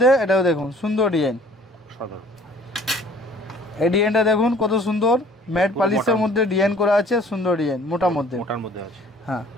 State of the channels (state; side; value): normal; both; correlation 0.53